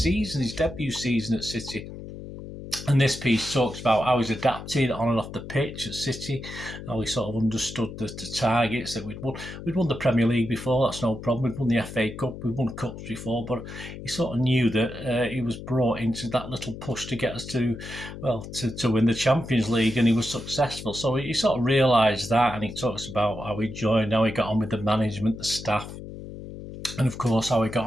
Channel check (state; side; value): noise; left; hum, 11 dB below the sound